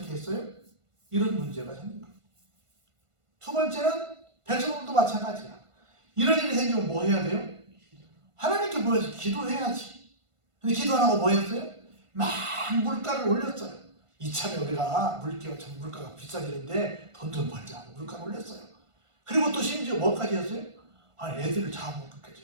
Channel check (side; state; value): left; late; 1.5 ms